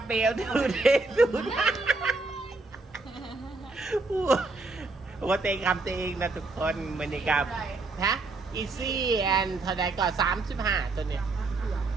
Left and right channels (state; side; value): quieter; left; 3.5 dB